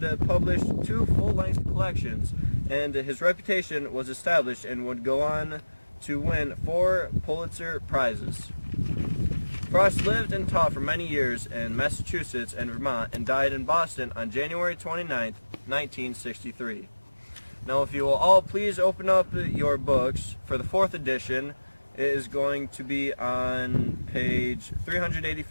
published 2 full-length collections, and his reputation was established and would go on to win 4 Pulitzer Prizes. Frost lived and taught for many years in Massachusetts and Vermont and died in Boston on January 29, 1963. Now, if you will all please open up your books for the 4th edition. It is going to be on page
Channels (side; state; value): both; inverted; correlation -1.00